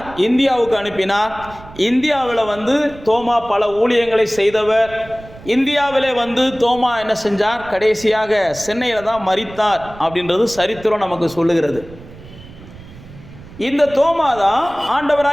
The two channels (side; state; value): right; noise; rumble, 18 dB below the sound